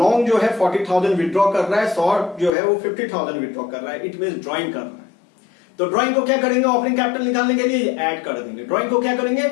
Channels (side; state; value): right; drops out; at 2.5 s